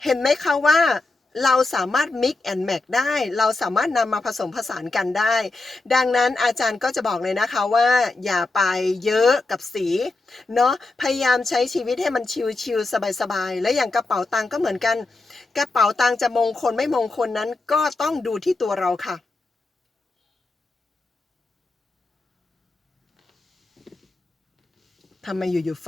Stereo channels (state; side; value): quieter; right; 3.3 dB